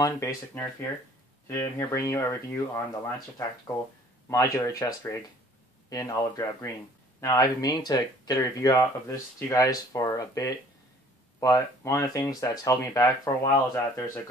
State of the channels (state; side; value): normal; both; correlation 0.54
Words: Basic Nerf here. Today I'm here bringing you a review on the Lancer Tactical Modular Chest Rig in olive drab green. Now I've been meaning to get a review out of this to you guys for a bit, but one of the things that's held me back for a while is that there's a